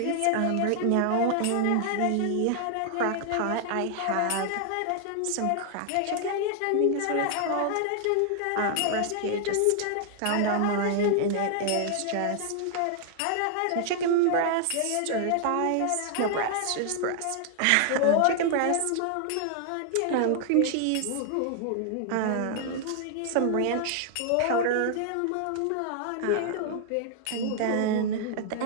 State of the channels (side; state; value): both; different; correlation 0.00